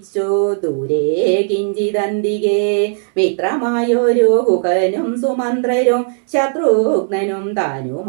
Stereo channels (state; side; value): silent; left; digital silence